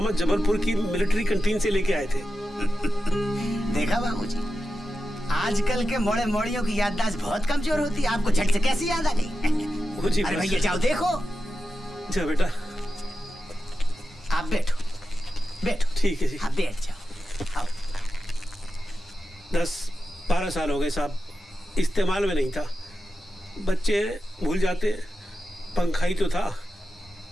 जबलपुर की मिलिट्री कैंटीन से लेके आए थे। देखा बाबूजी, आजकल के मोड़े मोड़ियों की याददाश्त बहुत कमजोर होती है। आपको झट से कैसी याद आ गई? अरे भैया जाओ देखो। जा बेटा, आप बैठो। ठीक है जी। हाँ बैठ जाओ। आओ। 10-12 साल हो गए साहब, इस्तेमाल में नहीं था। बच्चे भूल जाते, पंखा ही तो था।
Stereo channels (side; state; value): both; normal; correlation 0.91